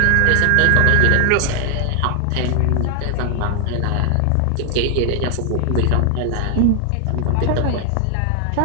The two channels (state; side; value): different; both; correlation 0.00